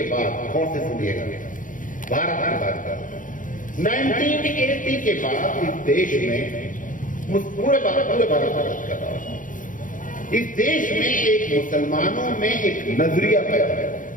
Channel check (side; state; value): right; late; 0.38 ms